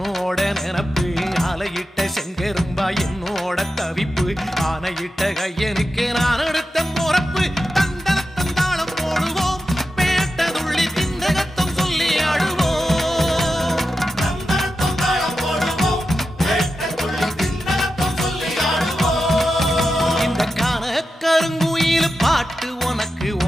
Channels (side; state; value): both; normal; correlation 0.90